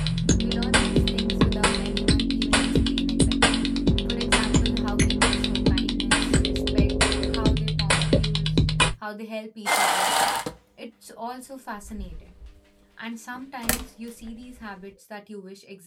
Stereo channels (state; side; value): identical; both; correlation 1.00